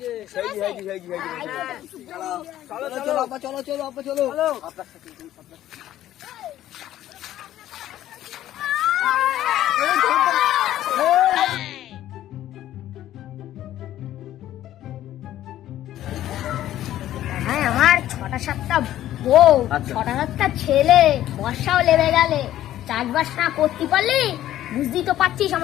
চলো আব্বা চলো আপনার সাথে হ্যাঁ, আমার 6টা-7টা বউ, 6টা-7টা ছেলে, বর্ষাও লেগে গেলে চাষবাস না করতে পারলি, বুঝতেই তো পারছিস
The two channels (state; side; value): quieter; right; 13.0 dB